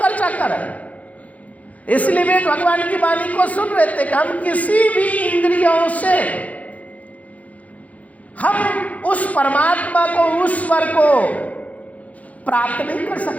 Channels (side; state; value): right; late; 0.070 ms